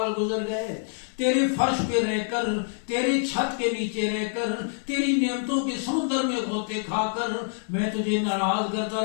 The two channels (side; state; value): right; silent; 60 dB below the other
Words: گزر گئے، تیرے فرش پہ رہ کر، تیری چھت کے نیچے رہ کر، تیری نعمتوں کے سمندر میں غوطے کھا کر میں تجھے ناراض کرتا